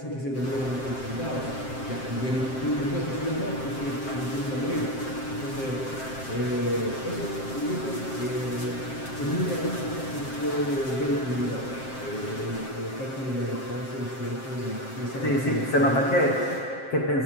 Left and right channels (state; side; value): late; right; 7.6 ms